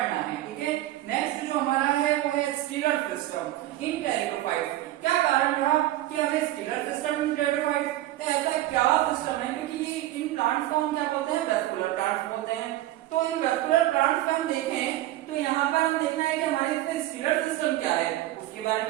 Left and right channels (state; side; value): quieter; left; 15.2 dB